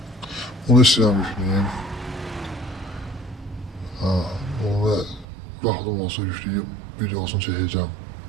Onu istəyirəm yükləyim. Onu vaxtım olsa yükləyib videosunu çəkəcəm.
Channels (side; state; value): left; drops out; at 5.2 s